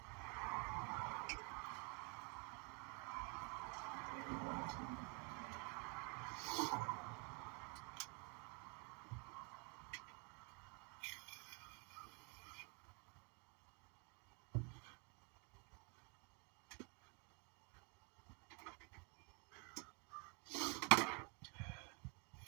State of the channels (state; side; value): quieter; left; 32.9 dB